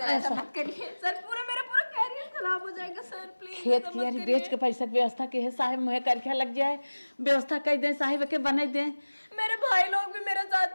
ऐसा मत करिए सर, पूरा मेरा खराब हो जाएगा सर, प्लीज खेत कियारी बेच के पैसा के व्यवस्था के है साहब, मुहे करके लग जाए, व्यवस्था कर दे साहिब के बना दे। मेरे भाई लोग भी मेरे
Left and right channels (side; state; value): both; inverted; correlation -1.00